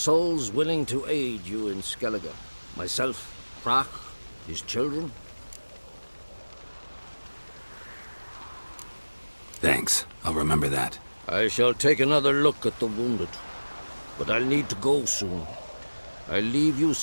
willing to aid you in Skellige. Myself, Prach, his children. Thanks. I'll remember that. I shall take another look at the wounded. But I'll need to go soon. I'll leave you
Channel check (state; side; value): inverted; both; correlation -1.00